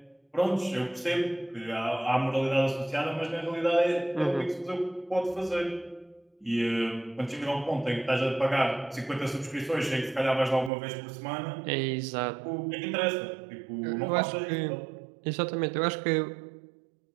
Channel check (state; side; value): drops out; left; at 10.7 s